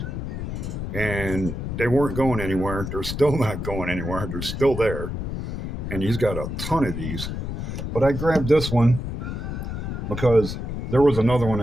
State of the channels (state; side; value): noise; left; rumble, 5 dB below the sound